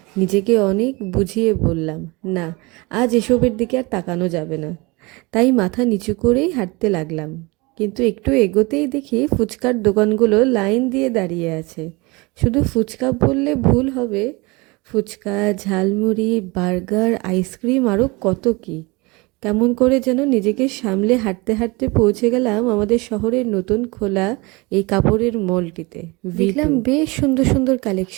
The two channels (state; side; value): quieter; left; 25.5 dB